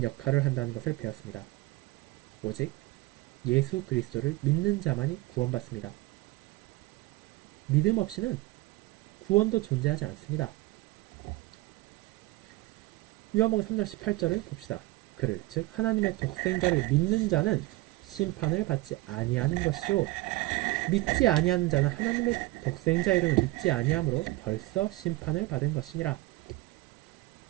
역할을 한다는 것을 배웠습니다. 오직 예수 그리스도를 믿는 자만이 구원받습니다. 믿음 없이는 구원도 존재하지 않습니다. 요한복음 3장 18절을 봅시다. 그를 즉 하나님의 독생자를 믿는 자는 심판을 받지 아니하는 것이요 믿지 아니하는 자는 하나님의 독생자 이름을 믿지 아니함으로 벌써 심판을 받은 것이니라.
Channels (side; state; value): left; quieter; 20.1 dB